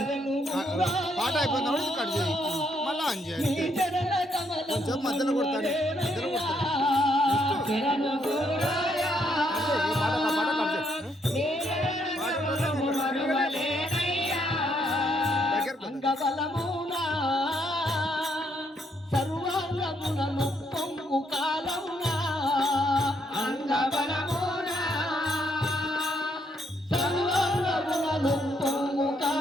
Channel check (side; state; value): both; normal; correlation 0.73